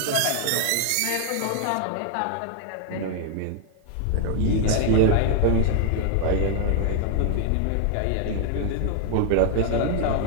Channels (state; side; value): different; both; correlation 0.00